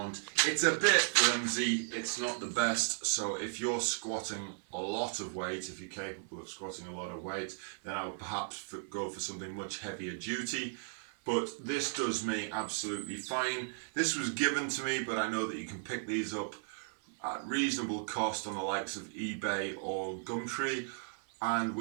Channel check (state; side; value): silent; left; 54 dB below the other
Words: It's a bit flimsy, it's not the best, so if you're squatting a lot of weight, if you're capable of squatting a lot of weight, then I would perhaps go for something much heavier duty. But this does me absolutely fine. This was given to me, but I know that you can pick these up at reasonable cost on the likes of eBay or Gumtree. And